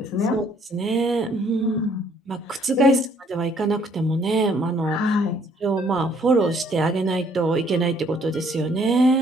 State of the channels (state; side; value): normal; both; correlation 0.63